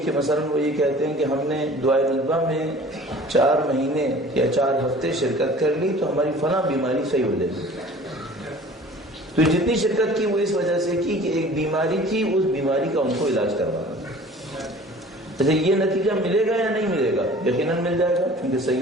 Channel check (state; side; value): normal; both; correlation 0.46